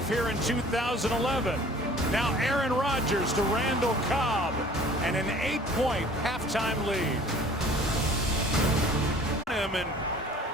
here in 2011. Now Aaron Rodgers to Randall Cobb, and an 8-point halftime lead. And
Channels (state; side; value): normal; both; correlation 0.50